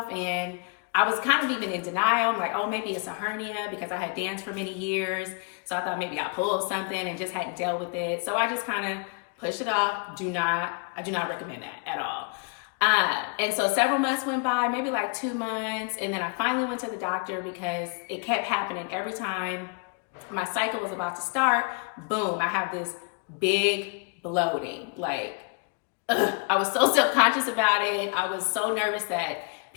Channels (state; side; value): quieter; right; 35.0 dB